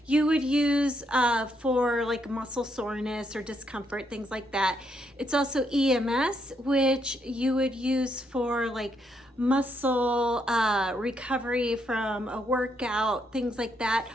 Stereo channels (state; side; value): normal; both; correlation 0.76